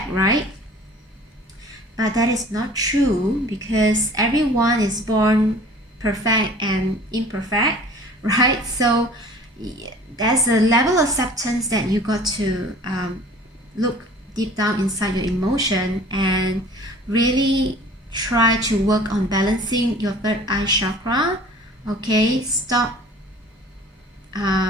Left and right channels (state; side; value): normal; both; correlation 0.47